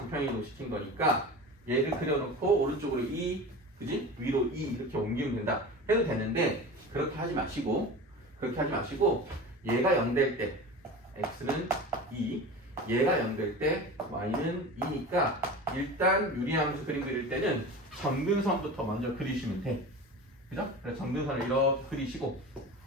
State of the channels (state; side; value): normal; both; correlation 0.32